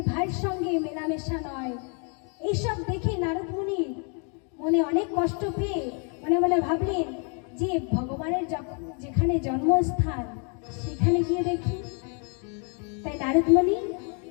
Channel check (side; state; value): right; quieter; 39.5 dB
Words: ভাইয়ের সঙ্গে মেলামেশা নয়। এইসব দেখে নারদ মুনি মনে অনেক কষ্ট পেয়ে মনে মনে ভাবলেন যে ভগবানের যেখানে জন্মস্থান সেখানে গিয়ে দেখি। তাই নারদ মুনি